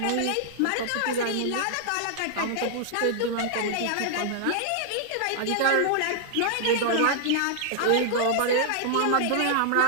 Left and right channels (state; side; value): different; both; correlation -0.01